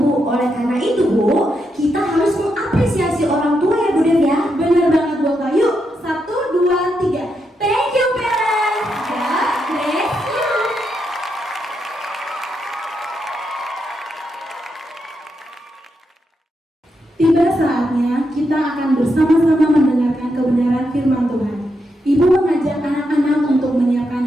Oleh karena itu Bu, kita harus mengapresiasi orang tua ya Bu Dev ya. Benar banget Bu Eka. Yuk, 1, 2, 3. Thank you parents. God bless you. Tiba saatnya kita akan bersama-sama mendengarkan kebenaran firman Tuhan. Ibu mengajak anak-anak untuk menyiapkan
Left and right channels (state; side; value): normal; both; correlation 0.82